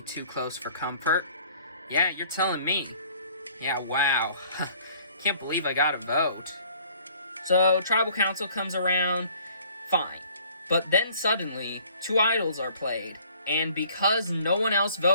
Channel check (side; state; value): both; inverted; correlation -0.56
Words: too close for comfort. Yeah, you're telling me. Yeah, wow. Can't believe I got a vote. So, tribal council comes around, fine. But then suddenly, two idols are played. And because no one else